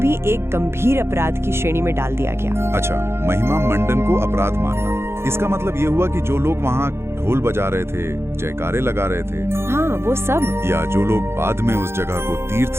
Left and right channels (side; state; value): left; late; 0.12 ms